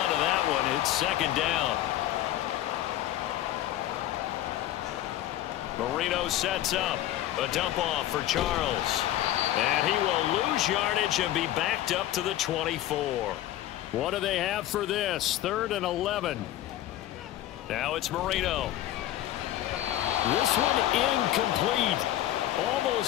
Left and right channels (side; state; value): right; quieter; 13.6 dB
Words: to that one. It's 2nd down. Marino sets up. A dump off for Charles. And he will lose yardage and be backed up to the 24. What do they have for this? 3rd and 11. Now it's Marino. This one incomplete.